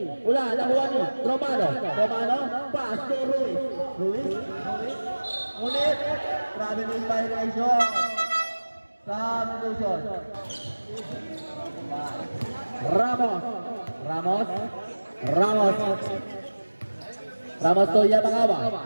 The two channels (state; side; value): inverted; both; correlation -1.00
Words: Wala na wani. Romano, pass to Ruiz. Ulit. Grabe na yung violation. Substitution. Ramos to